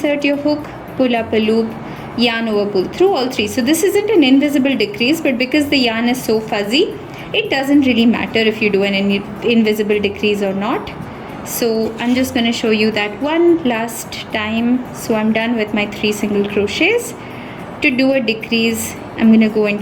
your hook, pull up a loop, yarn over, pull through all 3. So this isn't an invisible decrease, but because the yarn is so fuzzy, it doesn't really matter if you do an invisible decrease or not. So I'm just going to show you that one last time. So I'm done with my 3 single crochets. To do a decrease, I'm going to go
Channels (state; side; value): identical; both; correlation 1.00